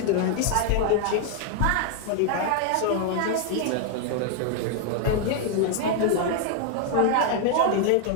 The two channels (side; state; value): both; different; correlation 0.00